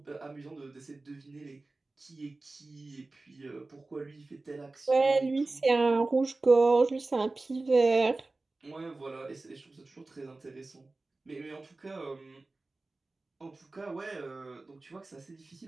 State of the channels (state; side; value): quieter; left; 3.3 dB